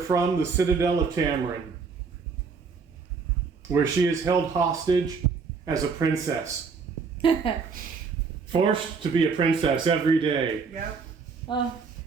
the citadel of Tamorin, where she is held hostage as a princess. Forced to be a princess every day. Yep. Oh,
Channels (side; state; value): left; quieter; 5.2 dB